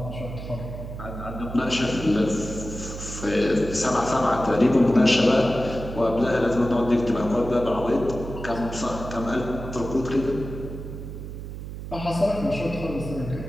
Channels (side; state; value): right; noise; hum, 9 dB below the sound